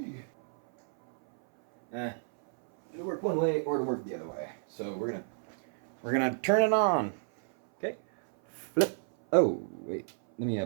It'll work one way or it'll work the other way. So we're gonna turn it on. Okay. Flip. Oh, wait. Let me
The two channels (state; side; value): silent; left; 58 dB below the other